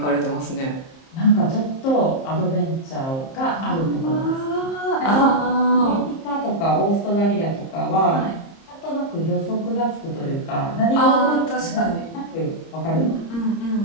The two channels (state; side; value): late; right; 30 ms